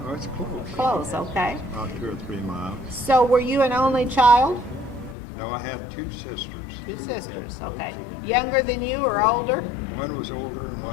Oh, it's close. Close. Okay. About 2 or 3 miles. So were you an only child? No, I had 2 sisters. 2 sisters. Okay. Younger than you or older? One was older and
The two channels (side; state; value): right; drops out; at 5.2 s